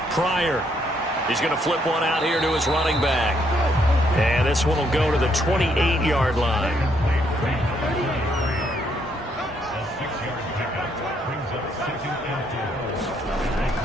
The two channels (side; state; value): both; normal; correlation 0.72